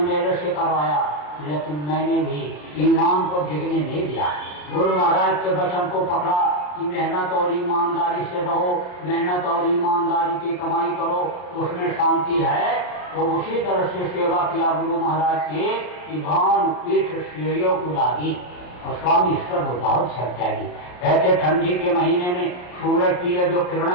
मेरे से करवाया, लेकिन मैंने भी ईमान को डिगने नहीं दिया। गुरु महाराज के वचन को पकड़ा कि मेहनत और ईमानदारी से रहो, मेहनत और ईमानदारी की कमाई करो, उसमें शांति है। तो उसी तरह से सेवा किया गुरु महाराज की कि भान पीठ श्रेयों को लागी और स्वामी सब बहुत सर त्यागी। ऐसे ठंडी के महीने में सूरज की ये जो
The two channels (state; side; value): late; right; 34 ms